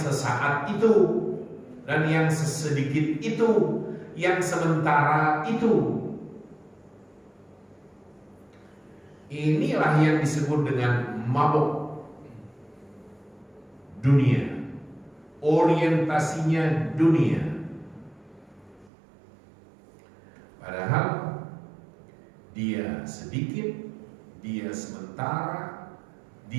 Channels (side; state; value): left; drops out; at 18.9 s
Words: itu dan yang sesedikit itu, yang sementara itu. Inilah yang disebut dengan mabuk dunia, orientasinya dunia. Padahal dia sedikit, dia sementara,